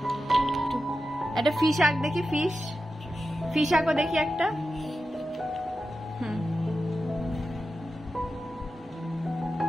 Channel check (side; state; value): both; normal; correlation 0.91